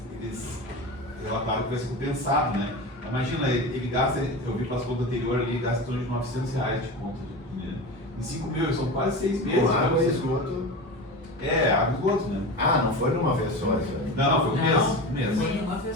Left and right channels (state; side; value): normal; both; correlation 0.27